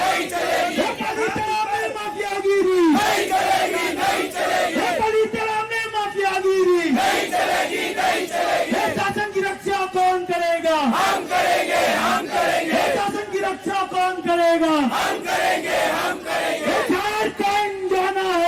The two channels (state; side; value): identical; both; correlation 1.00